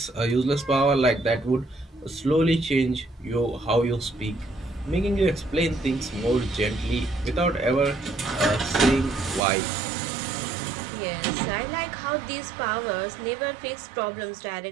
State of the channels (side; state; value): left; drops out; at 9.4 s